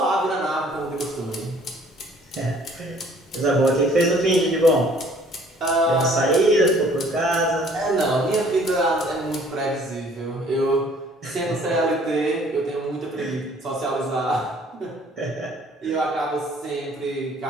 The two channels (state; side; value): normal; both; correlation 0.56